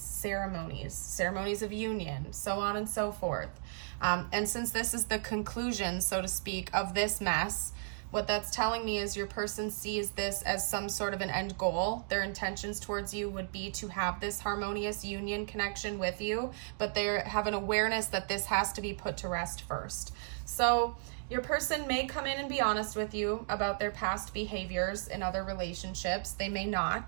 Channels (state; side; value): silent; left; digital silence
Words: of union, so on and so forth. And since this is the conclusion, so to speak, of this mess, what that's telling me is your person sees this as some sort of an end goal. Their intentions towards you would be to have this harmonious union connection with you, but they have an awareness that this has to be put to rest first. So your person may come in and be honest with you about their past behaviors in other relationships. They may